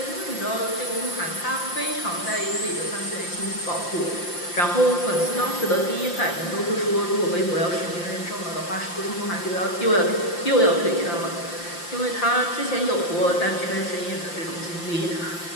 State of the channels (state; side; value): late; right; 5.8 ms